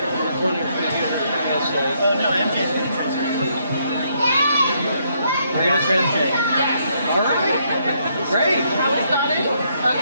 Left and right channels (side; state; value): both; inverted; correlation -0.73